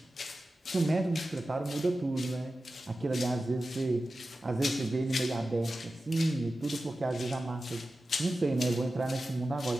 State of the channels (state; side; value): normal; both; correlation 0.94